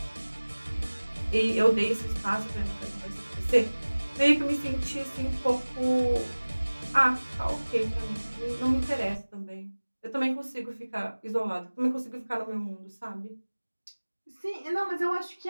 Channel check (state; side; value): inverted; both; correlation -1.00